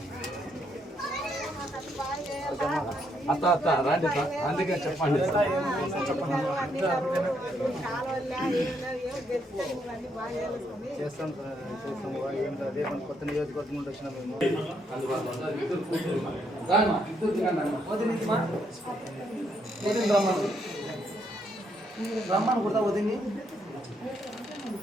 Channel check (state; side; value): normal; both; correlation 0.74